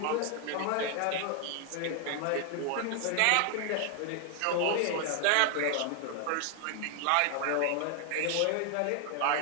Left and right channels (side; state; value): both; different; correlation 0.00